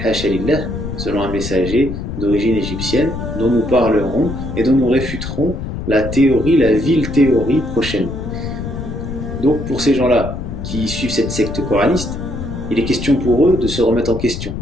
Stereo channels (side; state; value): left; noise; rumble, 6 dB below the sound